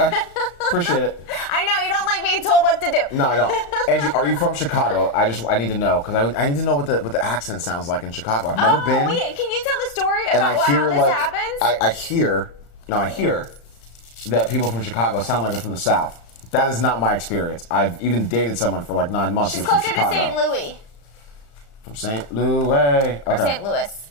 Appreciate it. I know. You don't like being told what to do. No, I don't. Angie, are you from Chicago? I need to know, because I need to know what the accent sounds like in Chicago. I've never been. Wait, can you tell the story And about how this happens? I hear that people from Chicago sound like they're from the South. That is not my experience. I've even dated someone for like 9 months She's who's from closer Chicago. to St. Louis. From St. Louis. Okay. Or St. Louis.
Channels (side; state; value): right; late; 35 ms